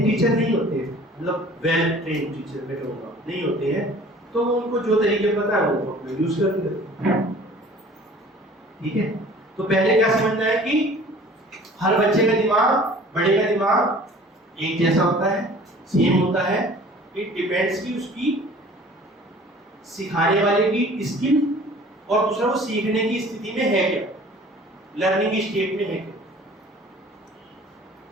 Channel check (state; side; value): normal; both; correlation 0.48